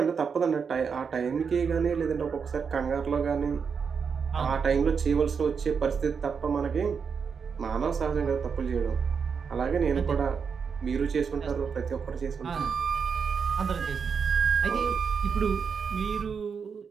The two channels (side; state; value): left; quieter; 6.1 dB